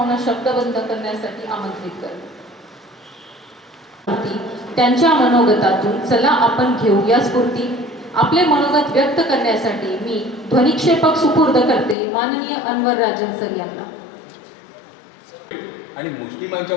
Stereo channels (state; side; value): drops out; right; at 12.0 s